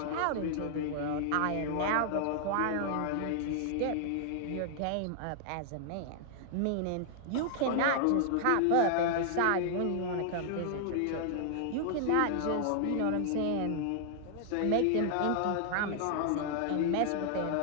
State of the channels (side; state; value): both; different; correlation -0.01